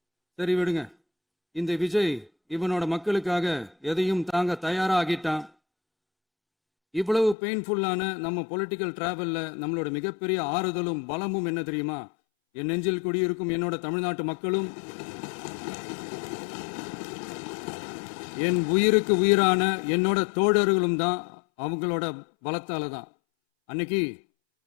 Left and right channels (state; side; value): drops out; right; at 7.4 s